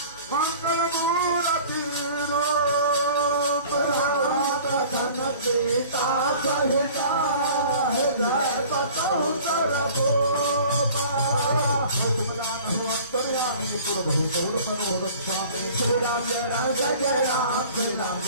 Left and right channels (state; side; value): inverted; both; correlation -0.46